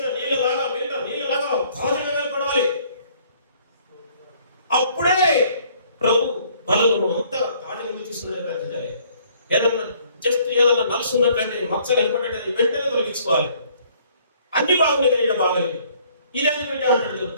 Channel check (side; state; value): both; inverted; correlation -0.60